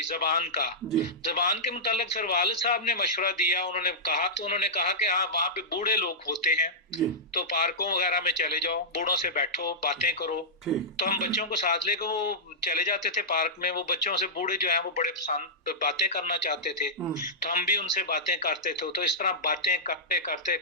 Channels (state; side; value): normal; both; correlation -0.14